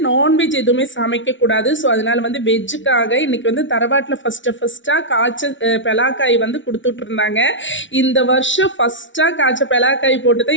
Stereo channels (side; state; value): right; late; 0.56 ms